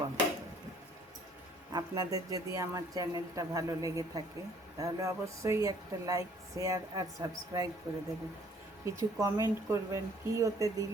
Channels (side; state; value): both; normal; correlation 0.59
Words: করে দেব। আপনাদের যদি আমার চ্যানেলটা ভালো লেগে থাকে তাহলে অবশ্যই একটা লাইক, শেয়ার আর সাবস্ক্রাইব করে দেবেন। কিছু কমেন্ট করবেন, কী ওতে